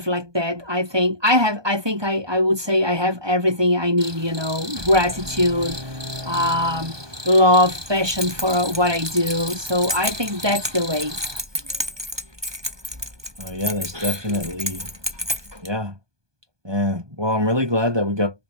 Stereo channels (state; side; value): late; left; 1.2 ms